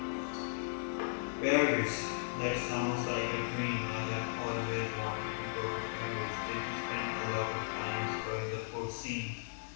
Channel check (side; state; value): right; silent; digital silence